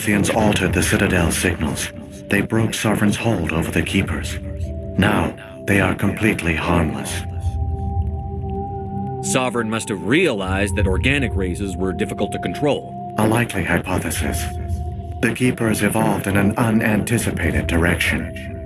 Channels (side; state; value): both; identical; correlation 1.00